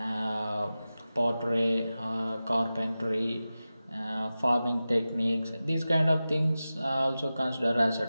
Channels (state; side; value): inverted; both; correlation -0.95